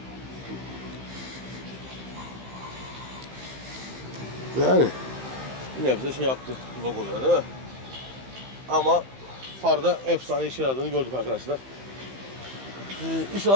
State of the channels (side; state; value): left; late; 15 ms